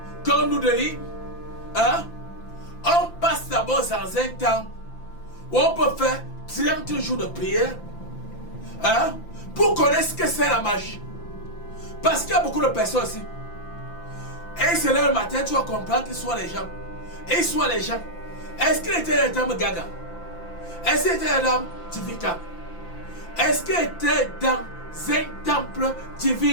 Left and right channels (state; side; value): late; right; 5.9 ms